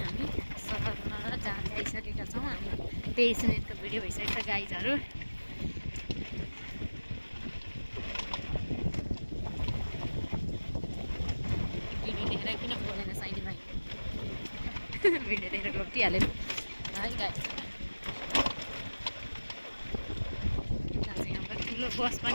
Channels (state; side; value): inverted; both; correlation -1.00